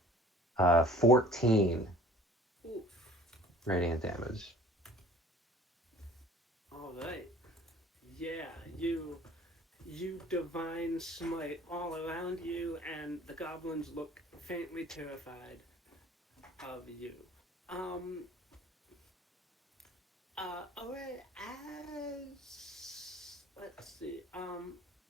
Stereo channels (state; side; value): normal; both; correlation 0.49